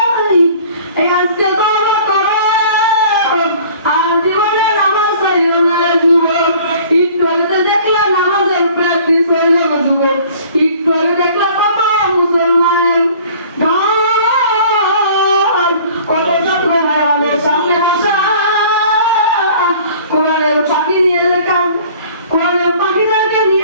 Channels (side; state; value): both; inverted; correlation -0.50